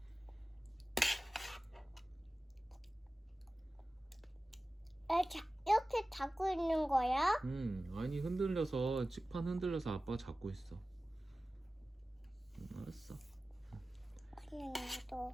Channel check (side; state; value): both; normal; correlation 0.96